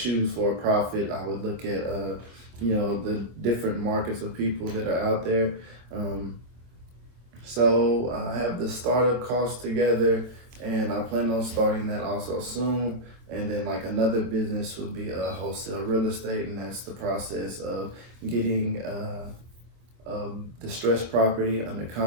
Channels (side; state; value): left; late; 25 ms